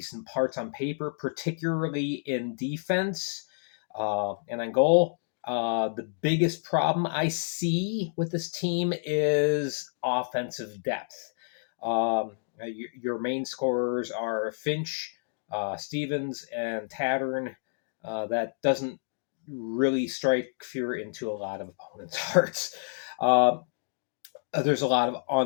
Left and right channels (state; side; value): silent; right; digital silence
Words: parts on paper, particularly in defense and on goal. The biggest problem I see with this team is offensive depth. Your main scorers are Finch, Stevens, and Tattern. That doesn't really strike fear into a lot of opponents' hearts. There's a lot of